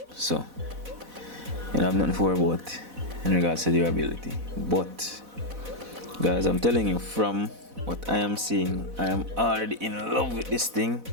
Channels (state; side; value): late; left; 4.1 ms